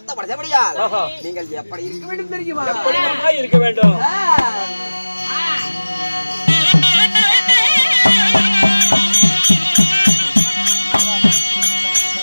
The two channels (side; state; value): both; inverted; correlation -1.00